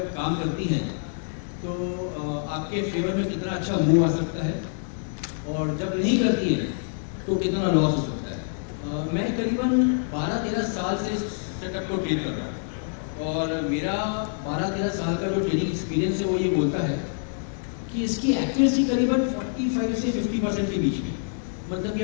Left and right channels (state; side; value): silent; right; digital silence